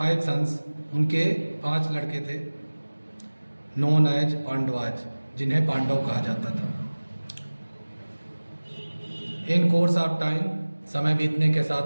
sons, उनके 5 लड़के थे, नोन एज पांडवाज, जिन्हें पांडव कहा जाता था। इन कोर्स ऑफ टाइम, समय बीतने के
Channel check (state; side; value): inverted; both; correlation -1.00